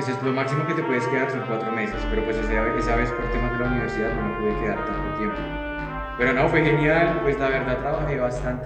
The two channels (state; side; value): identical; both; correlation 1.00